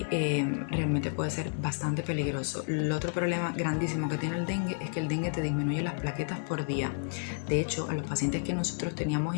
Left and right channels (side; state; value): right; silent; digital silence